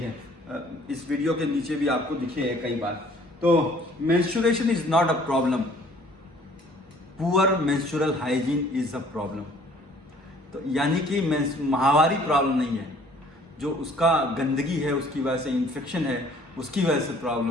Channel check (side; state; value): both; normal; correlation 0.56